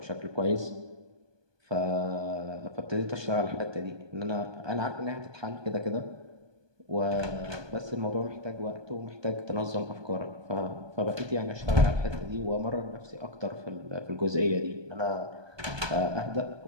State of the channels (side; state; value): left; late; 1.2 ms